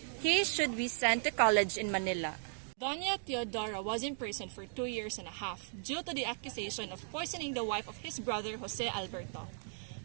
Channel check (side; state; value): left; silent; digital silence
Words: he should be sent to college in Manila. Doña Teodora was imprisoned for 2 years and a half due to the accusation of poisoning the wife of his brother Jose Alberto.